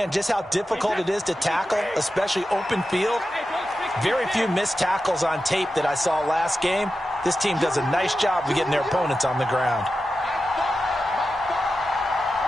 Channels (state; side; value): normal; both; correlation 0.91